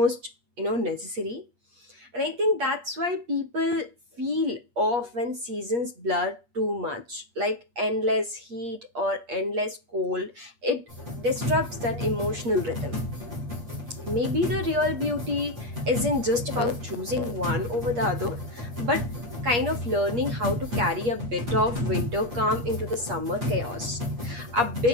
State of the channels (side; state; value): left; late; 8.4 ms